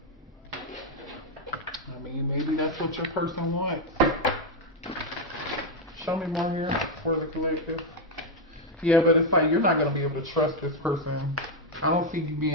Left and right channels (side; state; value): both; normal; correlation 0.03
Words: I mean, maybe that's what your person wants. Show me more here for the collective. Yeah, but it's like, you're not going to be able to trust this person. I don't see you